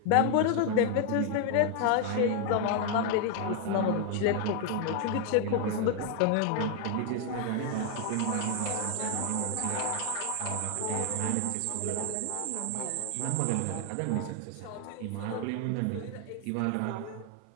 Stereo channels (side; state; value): both; different; correlation 0.00